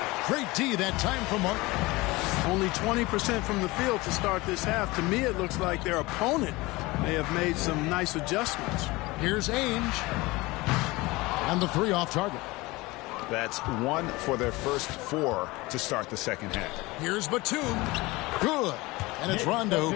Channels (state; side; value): quieter; right; 21.8 dB